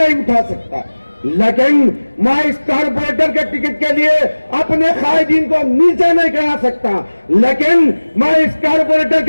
उठा सकता, लेकिन मैं इस कारपोरेटर के टिकट के लिए अपने कायदीन को नीचे नहीं करा सकता, लेकिन मैं इस कारपोरेटर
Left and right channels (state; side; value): inverted; both; correlation -1.00